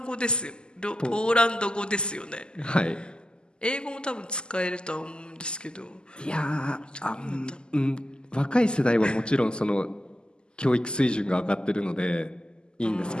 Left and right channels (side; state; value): right; late; 0.048 ms